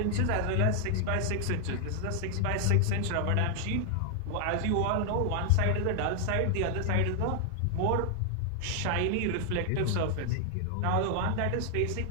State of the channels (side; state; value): both; different; correlation 0.00